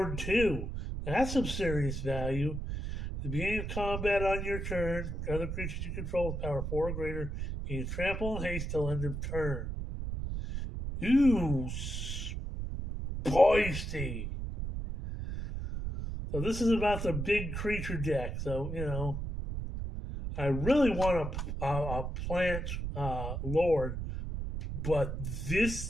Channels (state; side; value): noise; right; rumble, 4 dB below the sound